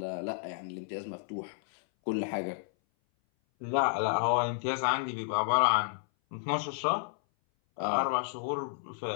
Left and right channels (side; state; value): right; silent; 57 dB below the other